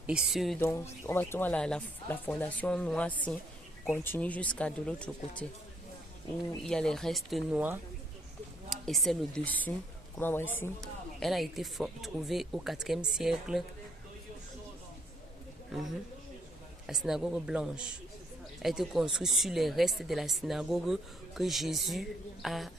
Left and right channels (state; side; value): normal; both; correlation 0.69